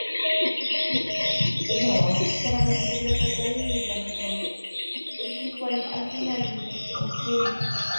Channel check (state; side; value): inverted; both; correlation -1.00